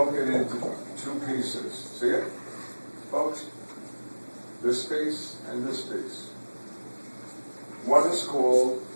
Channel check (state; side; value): inverted; both; correlation -1.00